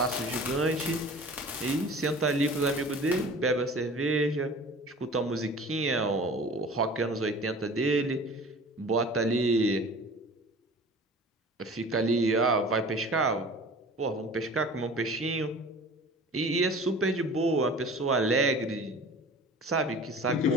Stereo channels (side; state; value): both; normal; correlation 0.42